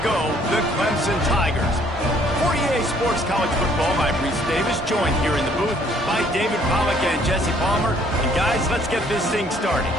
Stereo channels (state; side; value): normal; both; correlation 0.62